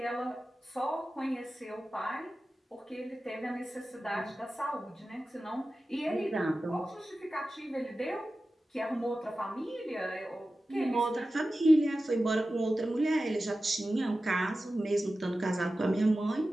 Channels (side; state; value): both; normal; correlation 0.94